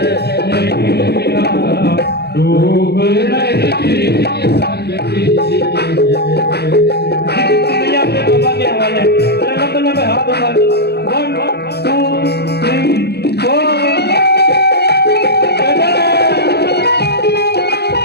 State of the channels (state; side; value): late; right; 0.47 ms